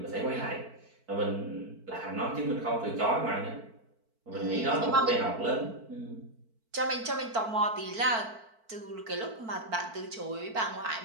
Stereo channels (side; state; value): left; late; 4.5 ms